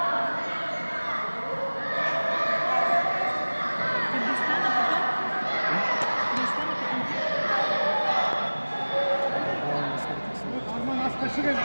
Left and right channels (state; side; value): inverted; both; correlation -1.00